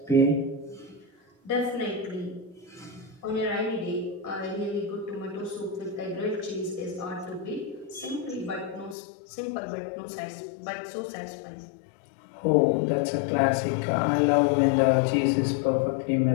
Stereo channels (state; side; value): drops out; right; at 9.0 s